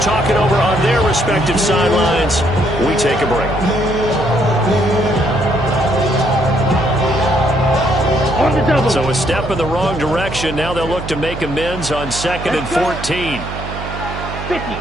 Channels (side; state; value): right; noise; hum, 9 dB below the sound